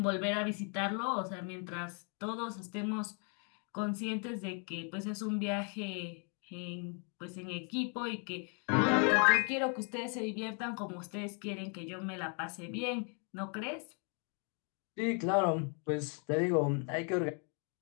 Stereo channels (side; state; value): right; quieter; 39.2 dB